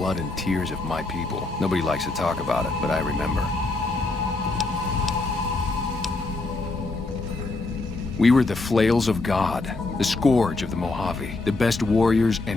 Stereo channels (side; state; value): right; quieter; 3.3 dB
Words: and tears of my people. Nobody likes to talk about it, but I remember. We were the flails of God, the scourge of the Mojave, the best warriors